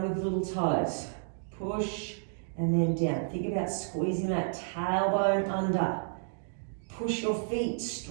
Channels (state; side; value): silent; left; digital silence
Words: with little toes. Push and then down. Think about squeezing that tailbone under. Push your feet